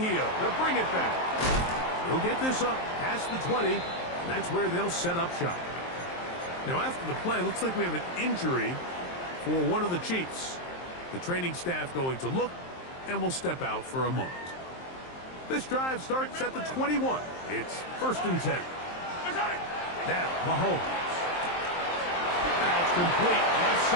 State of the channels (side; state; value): right; late; 23 ms